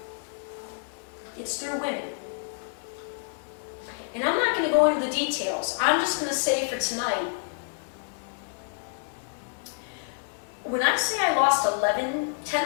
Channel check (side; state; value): right; silent; 59 dB below the other